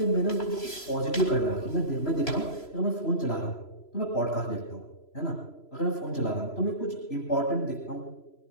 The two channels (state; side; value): late; right; 3.0 ms